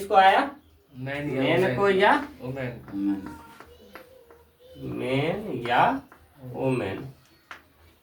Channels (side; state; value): both; identical; correlation 1.00